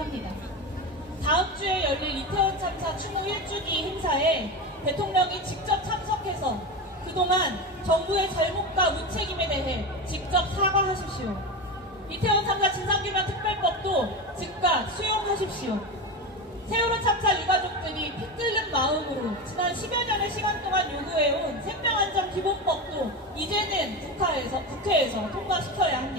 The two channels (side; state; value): both; normal; correlation 0.21